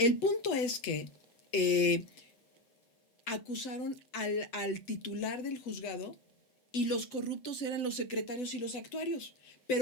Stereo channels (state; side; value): late; right; 7.8 ms